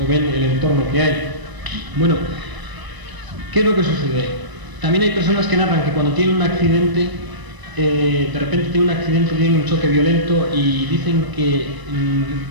o ven el entorno que hay. Bueno, ¿qué es lo que sucede? También hay personas que narran que cuando tienen un accidente, de repente tienen un accidente, tienen un choque violento y dicen que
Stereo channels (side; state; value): left; late; 1.0 ms